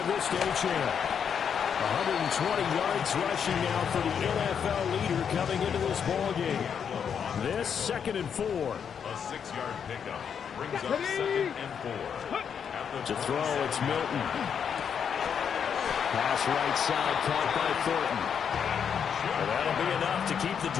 this to Achane. 120 yards rushing now for the NFL leader coming into this ballgame. This 2nd and 4. A 6-yard pickup brings up 2nd and 4. To throw, it's Milton. Pass right side, caught by Thornton. And that'll be enough to keep the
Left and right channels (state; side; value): quieter; right; 7.5 dB